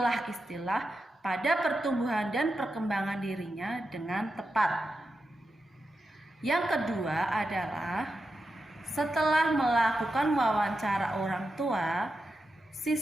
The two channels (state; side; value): normal; both; correlation 0.89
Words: pada pertumbuhan dan perkembangan dirinya dengan tepat. Yang kedua adalah, setelah melakukan wawancara orang tua,